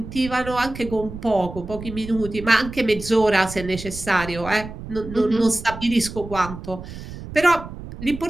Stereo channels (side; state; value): right; noise; rumble, 12 dB below the sound